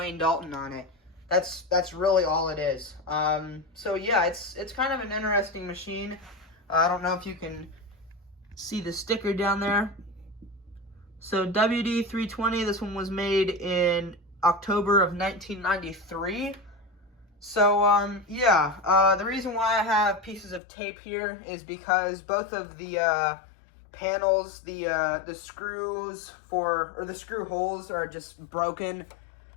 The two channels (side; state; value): right; drops out; at 20.6 s